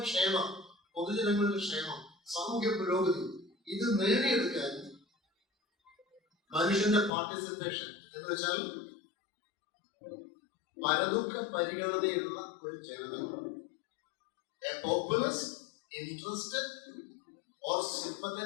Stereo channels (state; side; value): drops out; right; at 7.1 s